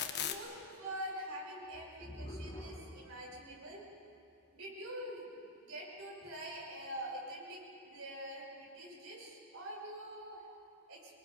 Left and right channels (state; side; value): normal; both; correlation -0.07